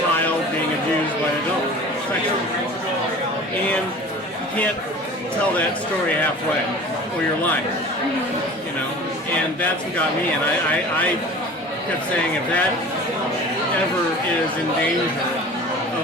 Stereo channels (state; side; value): normal; both; correlation 0.41